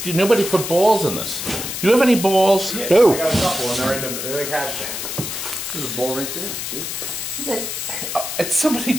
nobody put balls in this? Do you have any balls? Yeah, No. I got a couple and they're in the cash can. There's a ball right there, see? And somebody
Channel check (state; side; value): noise; left; hiss, 5 dB below the sound